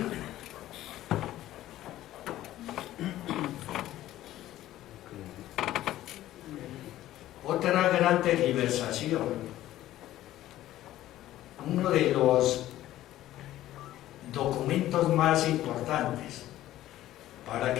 Otra gran tergiversación, uno de los documentos más importantes para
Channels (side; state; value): right; quieter; 14.2 dB